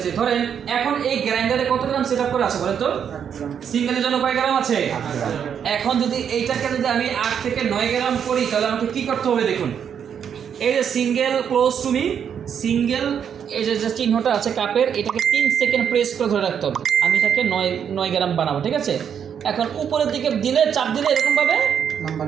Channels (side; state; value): left; quieter; 8.0 dB